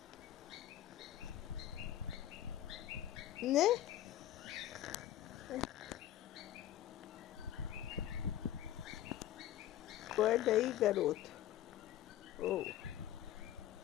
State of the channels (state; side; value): quieter; right; 12.4 dB